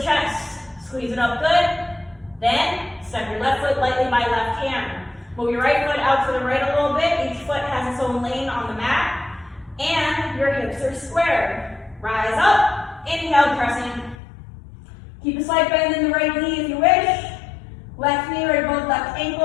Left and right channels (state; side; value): drops out; right; at 14.2 s